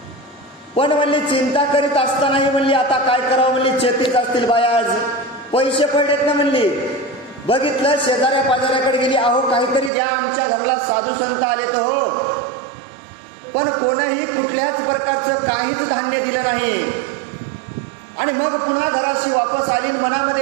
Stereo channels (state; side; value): drops out; left; at 9.9 s